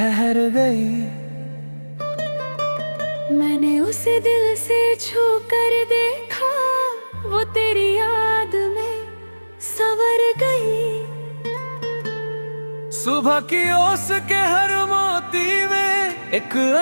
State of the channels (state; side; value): inverted; both; correlation -1.00